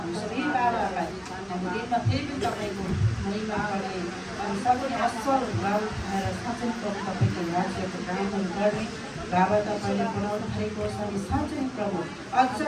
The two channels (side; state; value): both; identical; correlation 1.00